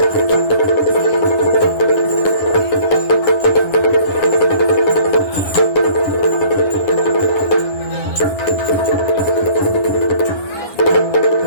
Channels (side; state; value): right; late; 9.8 ms